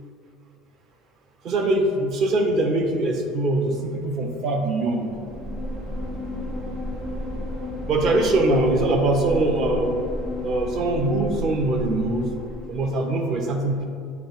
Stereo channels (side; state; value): both; normal; correlation 0.51